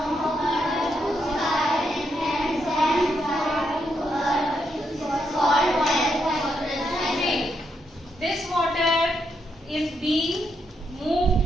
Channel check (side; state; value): both; normal; correlation 0.80